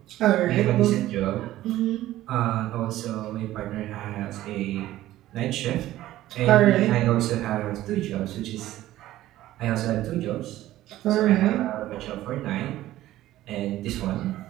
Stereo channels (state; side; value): quieter; left; 14.8 dB